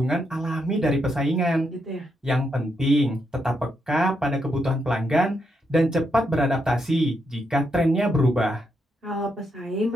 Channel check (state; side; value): normal; both; correlation 0.80